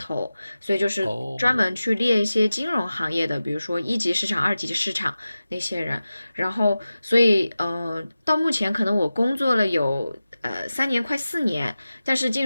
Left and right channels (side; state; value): both; inverted; correlation -0.95